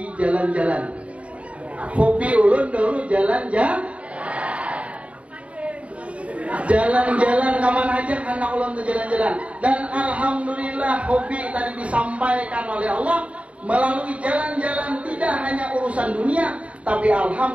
jalan-jalan. Hobi ulun dulu jalan-jalan. Jalan-jalan kemana aja anak ulun tuh jalan-jalan. Dan alhamdulillah hobi tadi disampaikan oleh Allah melalui jalan-jalan tidak hanya urusan dunia, tapi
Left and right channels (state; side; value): late; left; 0.064 ms